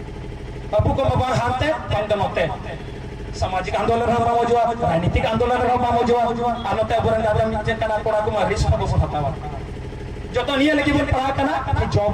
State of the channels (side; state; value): both; identical; correlation 1.00